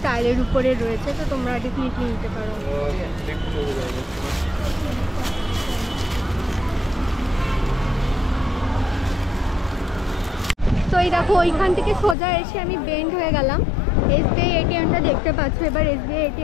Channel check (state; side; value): drops out; right; at 12.2 s